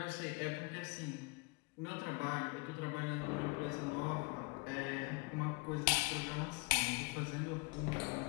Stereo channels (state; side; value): quieter; right; 27.1 dB